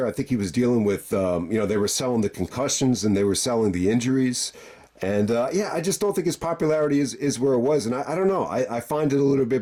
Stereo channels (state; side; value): identical; both; correlation 1.00